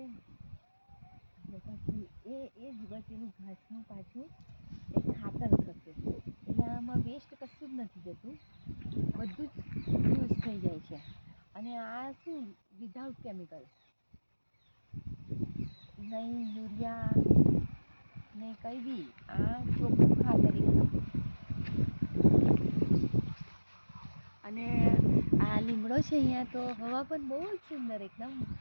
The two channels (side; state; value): both; inverted; correlation -1.00